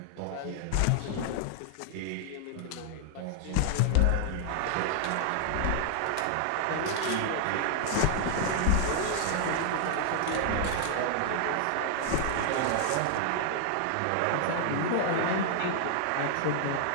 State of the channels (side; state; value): both; different; correlation -0.01